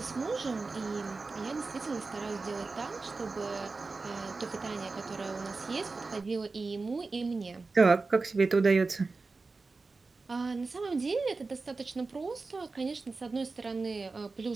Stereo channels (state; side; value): quieter; left; 3.9 dB